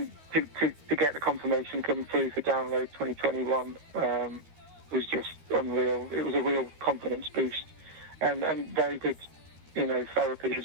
to get the confirmation come through for Download 2021 was just unreal. It was a real confidence boost, and very good, therapy as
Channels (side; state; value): left; late; 13 ms